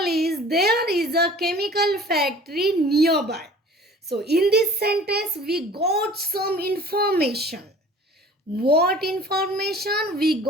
there is a chemical factory nearby. So in this sentence we got some information. What information? We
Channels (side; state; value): both; normal; correlation 0.46